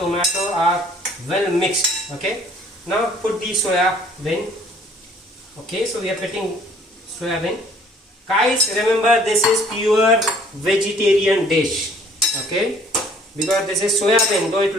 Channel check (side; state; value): both; normal; correlation 0.57